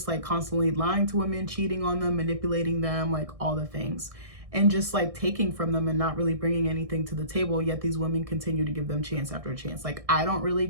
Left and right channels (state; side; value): late; left; 1.6 ms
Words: like constantly lying to women, cheating on them, manipulating them, like all the things, and just like taking from them and not really bringing anything to the table, yet these women continue to give them chance after chance. Like, I don't really